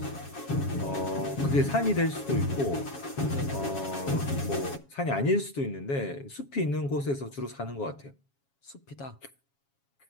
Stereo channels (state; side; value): late; right; 7.3 ms